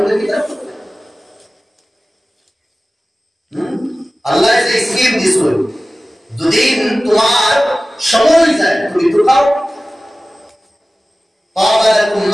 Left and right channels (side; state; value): both; normal; correlation 0.97